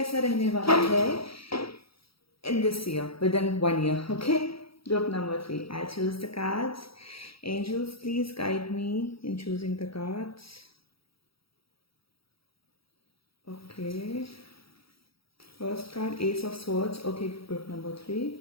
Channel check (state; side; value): late; right; 0.75 ms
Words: रहने वाला है in this year, within 1 year. Okay, group number 3, I'll choose the cards. Angels, please guide me in choosing the cards. Okay, first card, Ace of Swords. Okay, group number 3.